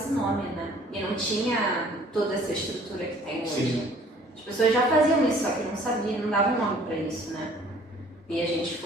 nome, né? E não tinha toda essa estrutura que tem hoje. Sim. As pessoas já faziam isso, só que não sabiam, não davam nome para isso, né? E a gente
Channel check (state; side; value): normal; both; correlation 0.55